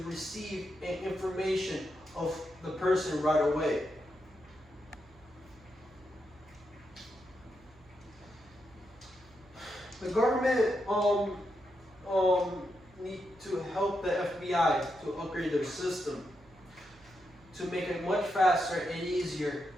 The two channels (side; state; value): right; noise; hum, 26 dB below the sound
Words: receive information of the person right away. The government need to help the FBI to upgrade their system to make it much faster and easier